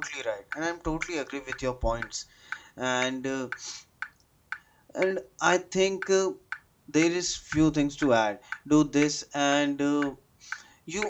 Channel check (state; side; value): identical; both; correlation 1.00